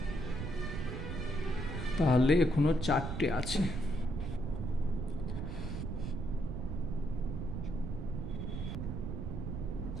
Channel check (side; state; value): right; noise; rumble, 4 dB below the sound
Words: তাহলে এখনো 4টে আছে।